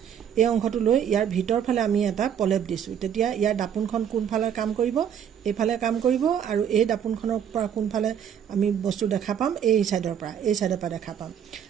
এই অংশটো লৈ ইয়াৰ ভিতৰ ফালে আমি এটা পলেপ দিছো। তেতিয়া ইয়াৰ দাপোনখন কোনফালে কাম কৰিব? এইফালে কাম কৰিব। আৰু এই দাপোনখনৰ পৰা কোনফালে আমি বস্তু দেখা পাম? এই চাইডৰ পৰা দেখা পাম।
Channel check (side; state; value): left; quieter; 8.7 dB